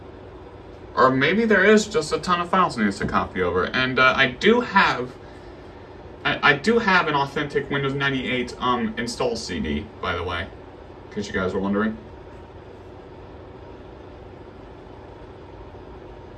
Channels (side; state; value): both; identical; correlation 1.00